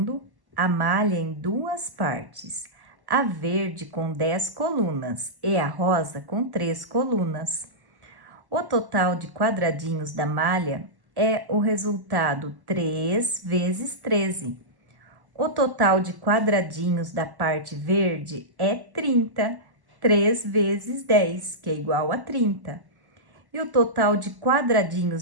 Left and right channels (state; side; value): late; left; 1.1 ms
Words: a malha em duas partes, a verde com 10 colunas e a rosa com 3 colunas. O total de quadradinhos da malha é o resultado 3 vezes 13. O total de quadradinhos da parte verde é 30, 3 vezes 10, que é igual a 30. E o total de